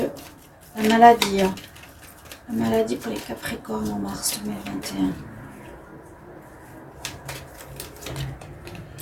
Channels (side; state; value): both; identical; correlation 1.00